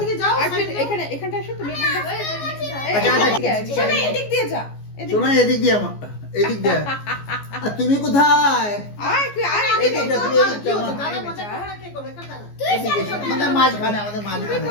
যাও। আসো, এখানে এখানটা আসো তুমি। এখানটা আচ্ছা, এদিকে আসো। শোনো এদিক দিয়ে যা। শোনো এদিক দিয়ে আমার এদিক দিয়ে। আর তুমি কোথায়? আয় তুই আয় এই এদিকে। দিকটা, তুমি এদিকটা আমার। দাদা মজা করে না, কে করবে? এখানে দাঁড়া। এদিকে এসো। আমাদের মাঝখানে, আমাদের তুই মাঝখানে।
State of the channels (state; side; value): late; right; 14 ms